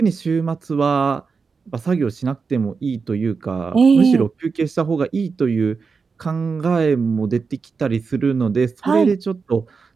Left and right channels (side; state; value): left; quieter; 5.1 dB